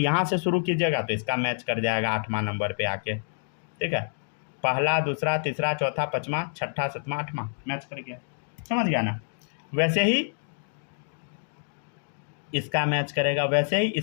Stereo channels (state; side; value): silent; right; digital silence